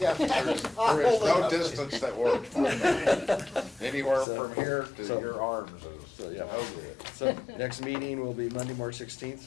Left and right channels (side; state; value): right; drops out; at 4.2 s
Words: is no distance that works. Anywhere So- from here to so- your arms is So, yeah. no good. So, next meeting will be Monday, March 16th,